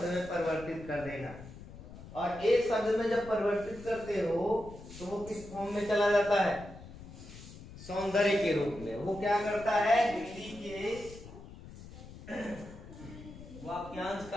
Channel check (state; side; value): noise; left; rumble, 15 dB below the sound